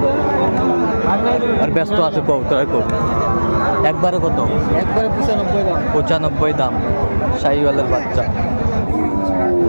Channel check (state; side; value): inverted; both; correlation -1.00